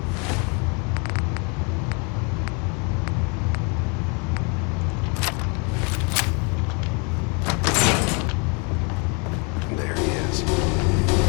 There he is.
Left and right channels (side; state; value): right; quieter; 33.9 dB